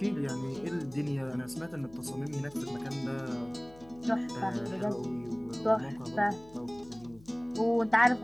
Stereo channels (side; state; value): left; noise; hum, 23 dB below the sound